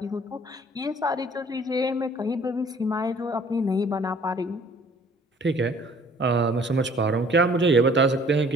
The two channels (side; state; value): both; normal; correlation 0.55